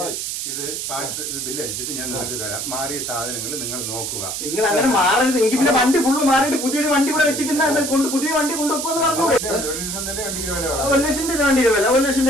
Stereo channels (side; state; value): right; noise; hiss, 4 dB below the sound